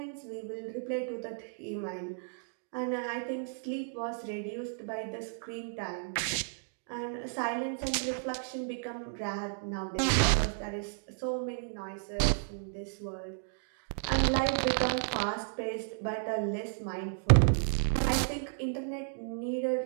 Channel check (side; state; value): left; silent; digital silence